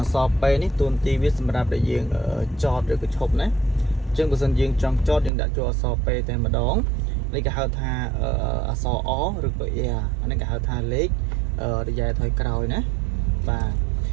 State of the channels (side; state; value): left; drops out; at 5.3 s